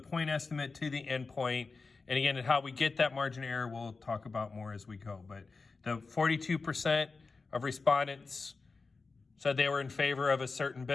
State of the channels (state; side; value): quieter; right; 4.2 dB